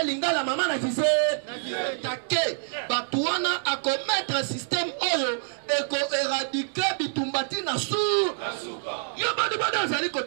lingala mama na kise take bato wana akomettre un système oyo eko éradiquer bitumbati na su yo badi badi azali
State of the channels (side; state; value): left; silent; digital silence